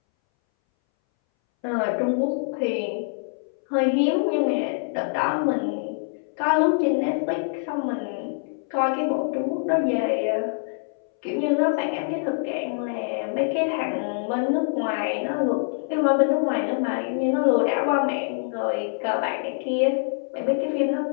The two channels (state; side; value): silent; right; 61 dB below the other